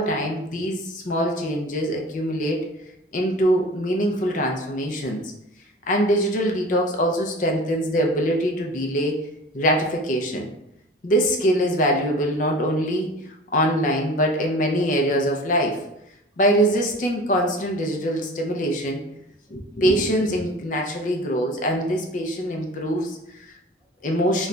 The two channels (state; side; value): normal; both; correlation 0.40